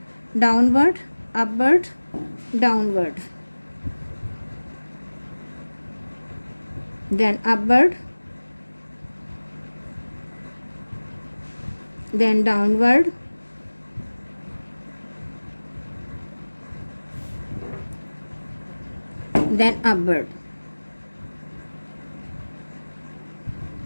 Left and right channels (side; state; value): both; inverted; correlation -1.00